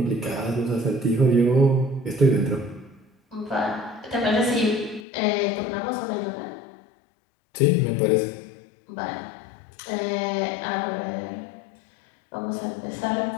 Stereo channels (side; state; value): right; drops out; at 5.1 s